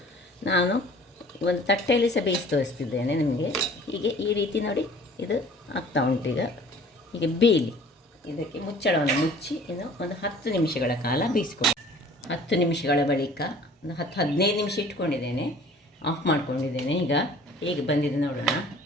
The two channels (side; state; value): both; normal; correlation 0.50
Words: ನಾನು ಒಂದು ತಟ್ಟೆಯಲ್ಲಿ ಸಹ ಬೇಯಿಸಿ ತೋರಿಸ್ತಿದ್ದೇನೆ ನಿಮಗೆ. ಹೀಗೆ ಈ ರೀತಿ ನೋಡಿ ಇದು ಆಗ್ತಾ ಉಂಟೀಗ. ಹೀಗೆ ಬೇಯಲಿ. ಇದಕ್ಕೆ ಮುಚ್ಚಳವನ್ನು ಮುಚ್ಚಿ ಇನ್ನು ಒಂದು 10 ನಿಮಿಷಗಳ ಕಾಲ ಬೇಯಿಸ್ಕೊಂಡು 10 ನಿಮಿಷಗಳ ಬಳಿಕ ಒಂದು 10-15 ನಿಮಿಷ ಇಟ್ಕೊಂಡಿದ್ದೇನೆ. ಆಫ್ ಮಾಡ್ಕೊಂಡಿದ್ದೇನೆ. ಈಗ ಹೇಗೆ ಬಂದಿದೆ ನೋಡೋಣ.